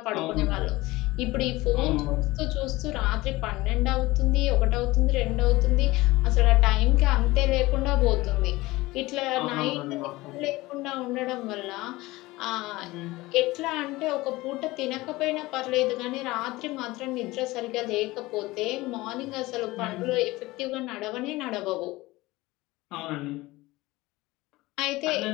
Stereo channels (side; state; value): right; quieter; 19.9 dB